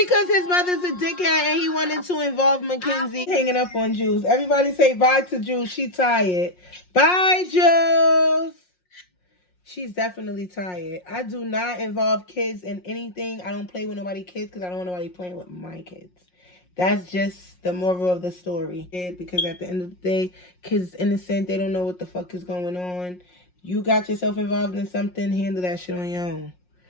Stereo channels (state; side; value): late; right; 5.6 ms